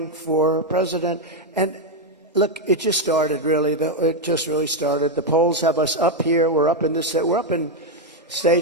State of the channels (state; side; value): normal; both; correlation 0.03